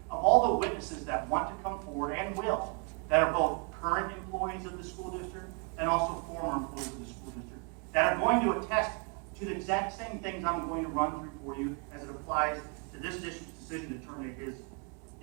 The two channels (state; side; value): quieter; left; 36.7 dB